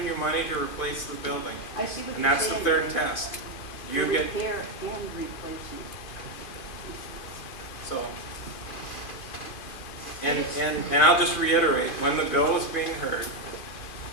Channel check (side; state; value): right; late; 2.5 ms